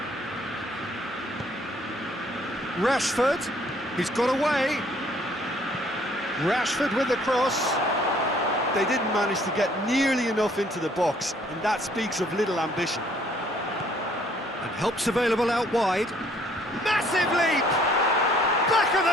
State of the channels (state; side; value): normal; both; correlation 0.61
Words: Rashford, he's got away. Rashford with the cross. They didn't manage to get nearly enough into the box, and that speaks of little ambition. And help's available out wide. Massive leap! Back of